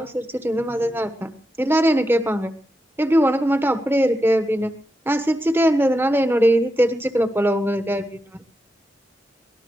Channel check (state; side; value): normal; both; correlation 0.87